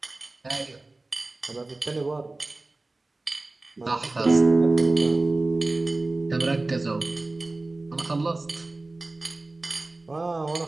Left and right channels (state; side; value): quieter; left; 3.1 dB